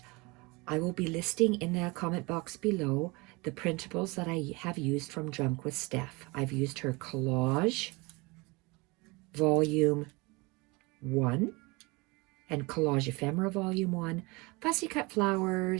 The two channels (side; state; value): left; quieter; 25.8 dB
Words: I will be listing in the comment box below the printables that I have used from Junk With Steph. I've used her Collage Volume 1 and Collage Ephemera Volume 1, Fussy